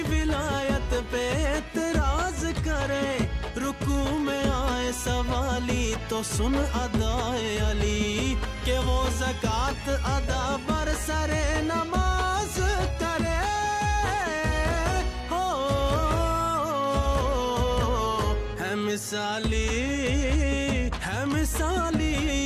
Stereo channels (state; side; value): identical; both; correlation 1.00